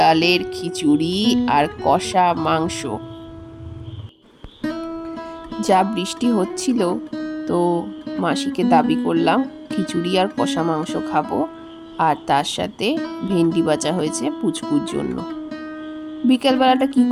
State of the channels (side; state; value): both; identical; correlation 1.00